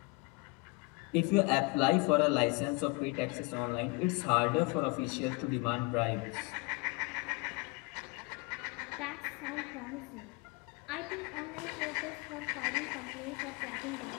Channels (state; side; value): quieter; right; 27.8 dB